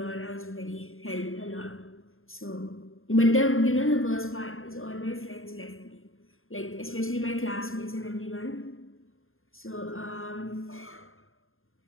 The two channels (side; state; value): right; late; 0.60 ms